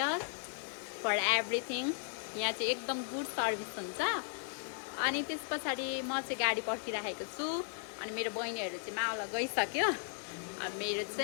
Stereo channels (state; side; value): silent; right; digital silence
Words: for everything. यहाँ चाहिँ एकदम गुड सर्भिस हुन्छ. अनि त्यस पछाडि म चाहिँ गाडी पर्खिराखेको छु अनि मेरो बहिनीहरु चाहिँ मावल गइसक्यो. अनि मेरो